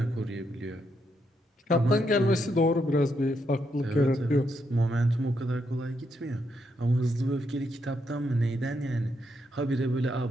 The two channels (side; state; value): both; normal; correlation 0.79